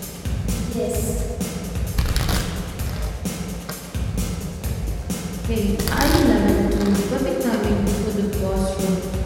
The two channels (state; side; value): identical; both; correlation 1.00